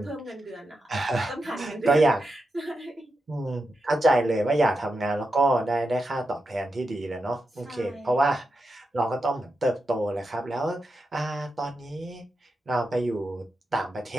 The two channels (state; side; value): normal; both; correlation 0.88